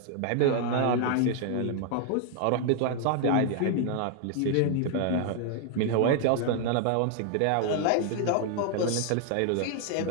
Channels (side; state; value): both; different; correlation 0.00